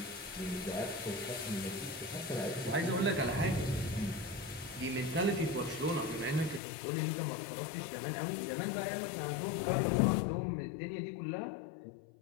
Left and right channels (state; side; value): drops out; right; at 6.6 s